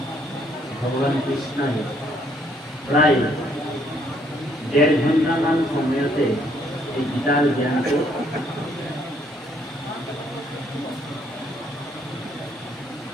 ভগৱান কৃষ্ণই প্ৰায় 1.5 ঘণ্টামান সময়তে এই গীতাৰ জ্ঞানটো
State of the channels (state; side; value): normal; both; correlation 0.68